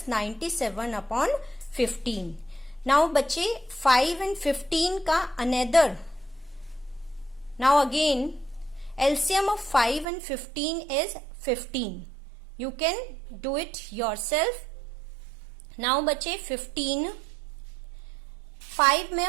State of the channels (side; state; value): left; drops out; at 10.1 s